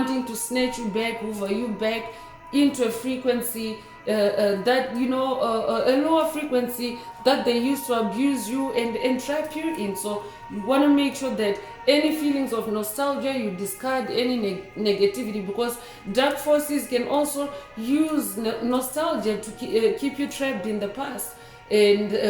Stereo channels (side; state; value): both; identical; correlation 1.00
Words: to snatch you back, hoover you back into a frequency that a lower frequency that they used to abuse you and entrap you in. So you want to make sure that any feelings of nostalgia, you discard any negativity, because dark forces can also use nostalgia to keep you trapped in the past, and